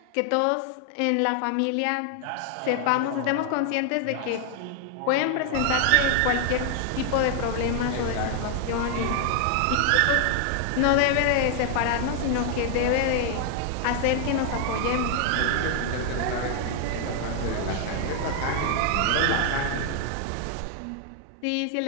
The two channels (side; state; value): both; different; correlation 0.00